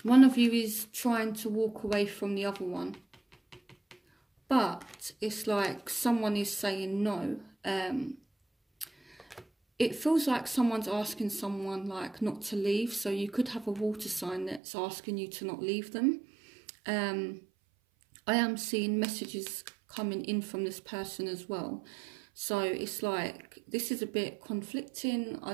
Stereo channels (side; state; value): left; drops out; at 14.6 s